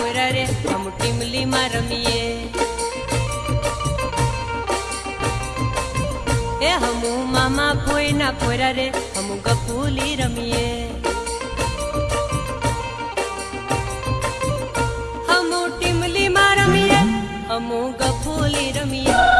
रे हम टीमली में रमीए ए हमू मामा भोयना पोरा रे हम गपूली रमीए।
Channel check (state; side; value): identical; both; correlation 1.00